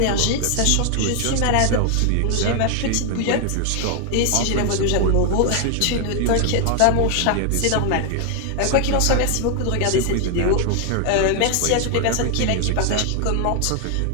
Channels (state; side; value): different; both; correlation 0.00